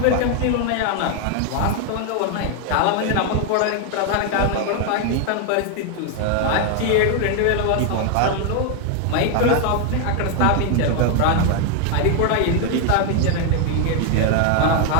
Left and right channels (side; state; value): both; different; correlation 0.01